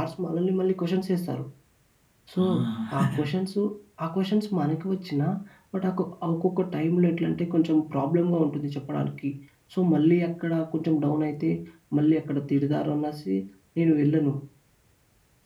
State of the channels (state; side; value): identical; both; correlation 1.00